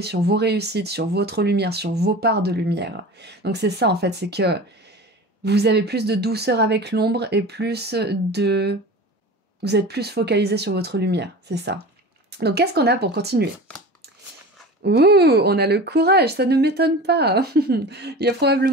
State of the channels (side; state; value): both; normal; correlation 0.34